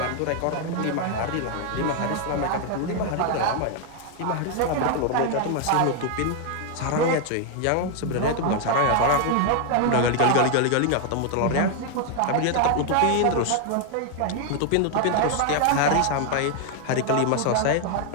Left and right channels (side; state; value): both; different; correlation 0.00